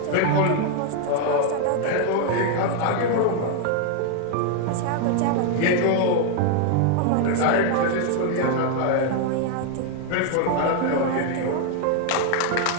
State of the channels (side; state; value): both; different; correlation 0.00